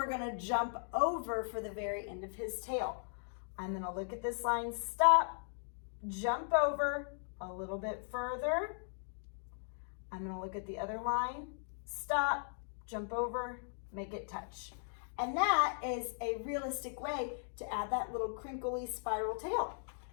gonna jump over for the very end of his tail. I'm gonna look at this line, stop, jump over a little bit further. I'm gonna look at the other line, stop, jump over, make it touch. And that is a realistic way to add that little crinkly spiral tail.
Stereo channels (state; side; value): silent; right; digital silence